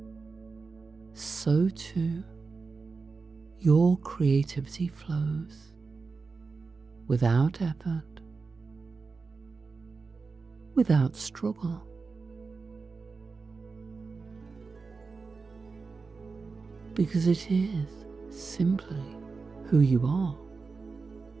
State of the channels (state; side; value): quieter; left; 4.5 dB